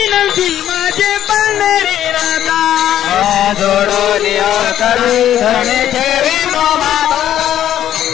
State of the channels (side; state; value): right; quieter; 11.2 dB